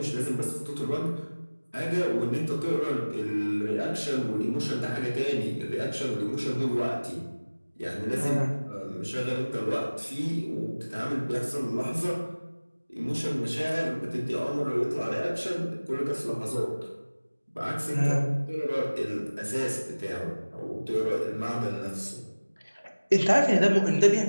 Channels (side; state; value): both; inverted; correlation -1.00